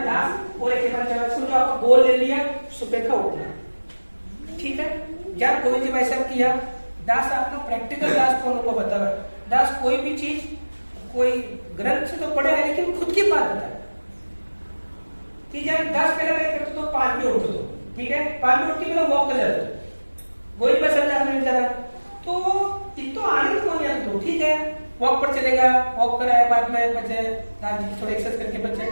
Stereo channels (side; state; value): both; inverted; correlation -1.00